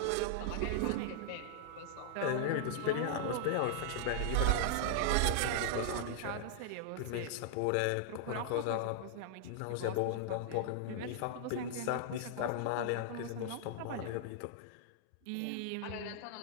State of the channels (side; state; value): both; different; correlation -0.01